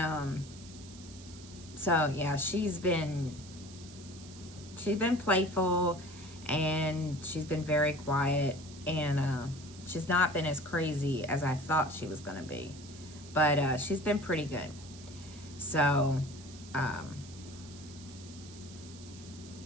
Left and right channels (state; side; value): noise; right; hiss, 18 dB below the sound